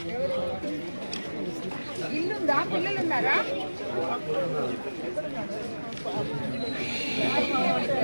ఇల్లుందా పిల్లలు ఉన్నారా?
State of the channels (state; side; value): inverted; both; correlation -1.00